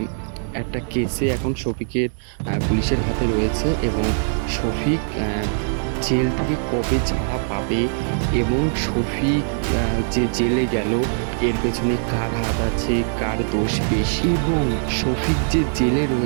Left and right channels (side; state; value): left; silent; digital silence